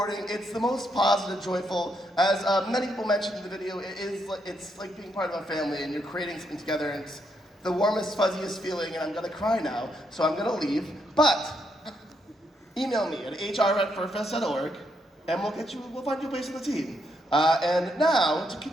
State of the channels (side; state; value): both; normal; correlation 0.78